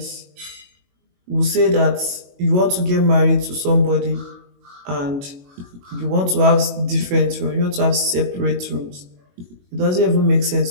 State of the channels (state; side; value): late; left; 22 ms